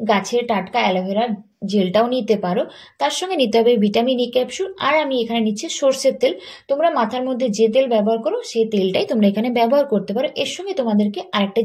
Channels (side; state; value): both; identical; correlation 1.00